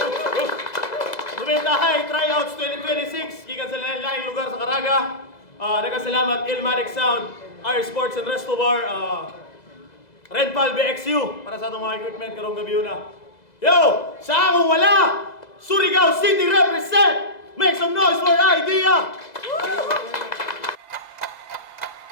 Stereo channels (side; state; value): right; late; 2.0 ms